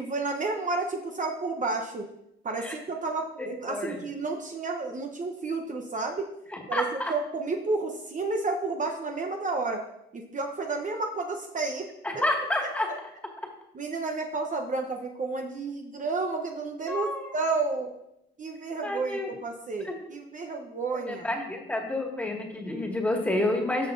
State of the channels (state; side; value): normal; both; correlation 0.46